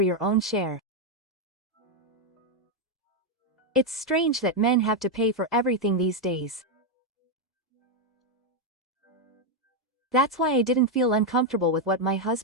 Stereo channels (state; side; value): normal; both; correlation 0.02